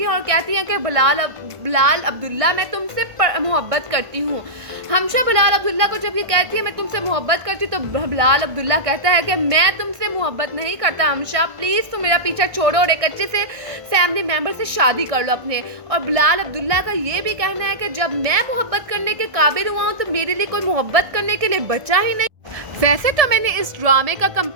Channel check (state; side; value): late; left; 1.6 ms